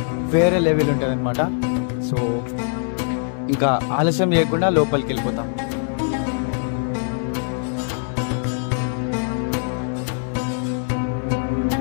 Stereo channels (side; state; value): right; silent; 64 dB below the other